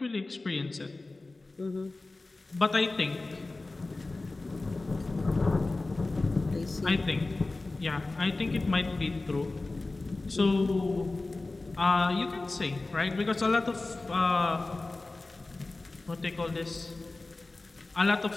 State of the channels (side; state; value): right; quieter; 3.2 dB